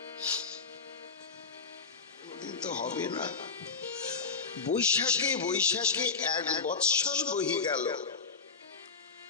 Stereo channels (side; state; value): right; quieter; 4.9 dB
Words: তো হবে না। বৈশাখে 1 বৎসর বহি গেল,